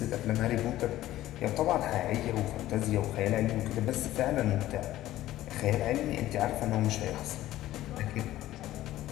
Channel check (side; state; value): right; quieter; 14.7 dB